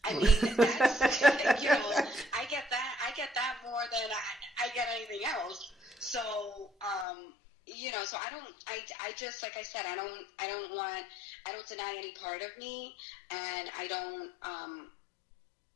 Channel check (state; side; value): drops out; right; at 7.1 s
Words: I mean, that's, you know, I get that more than I get anything else. So, you know, so I just, like I said, I don't deny any part of me, and I